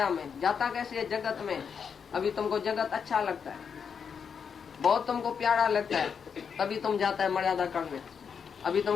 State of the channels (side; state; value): right; quieter; 6.6 dB